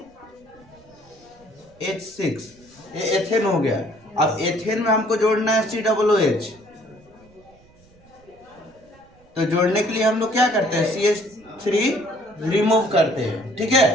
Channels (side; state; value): right; noise; rumble, 28 dB below the sound